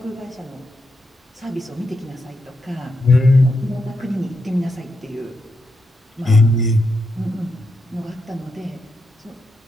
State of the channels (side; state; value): both; normal; correlation 0.83